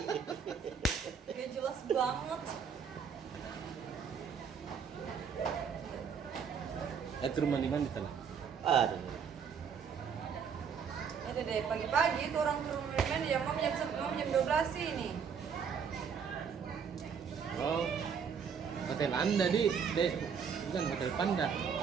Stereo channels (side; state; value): left; quieter; 6.7 dB